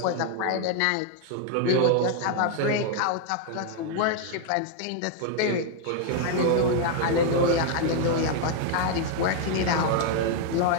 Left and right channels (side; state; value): both; different; correlation 0.00